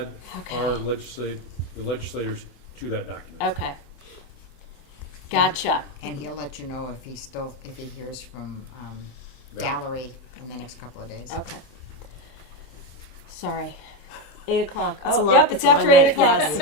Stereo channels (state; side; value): late; right; 27 ms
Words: Okay. our the legislators to that document. Okay. Gotcha. And he'll let you know if he hears from Val. Gallery in the next couple of days. Okay. Sorry. 8 o'clock. It's a Oh, long- yep, it's it's a long after 8 night, o'clock.